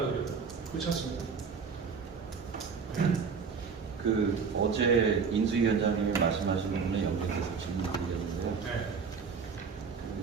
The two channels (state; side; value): quieter; left; 5.7 dB